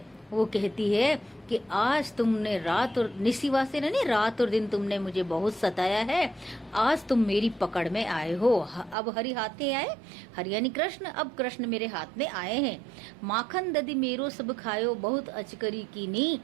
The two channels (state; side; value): drops out; left; at 9.0 s